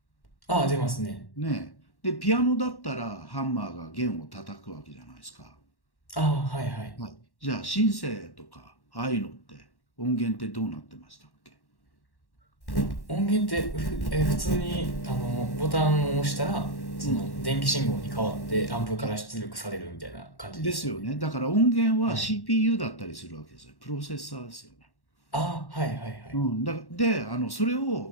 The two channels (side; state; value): right; late; 1.1 ms